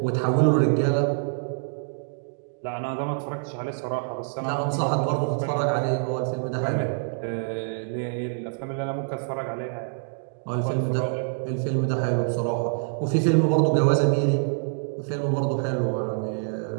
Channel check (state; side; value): silent; left; digital silence